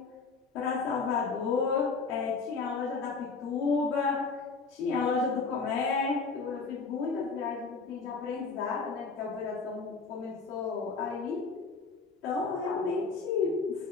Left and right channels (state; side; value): quieter; right; 4.5 dB